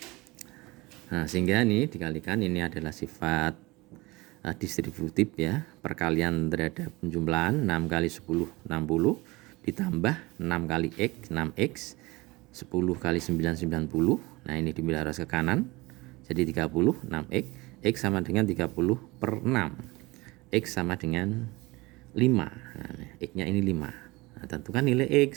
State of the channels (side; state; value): left; quieter; 22.5 dB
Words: Nah, sehingga ini dikalikan, ini adalah sifat distributif ya, perkalian terhadap penjumlahan 6 kali 10 60 ditambah 6 kali X 6X 10 kali 9 90. Nah, ini dibalik ke kanan jadi 30 6X. X sama dengan 30/6. X sama dengan 5. Nah, X-nya ini 5. Nah, tentukan nilai